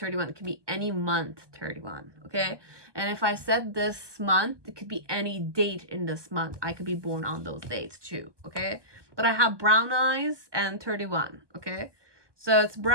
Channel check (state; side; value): late; left; 1.2 ms